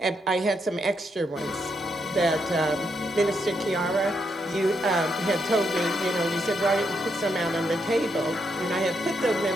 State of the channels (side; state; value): both; normal; correlation 0.79